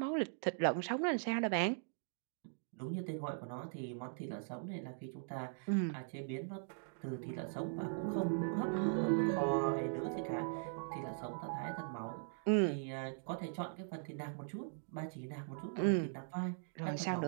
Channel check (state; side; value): silent; left; digital silence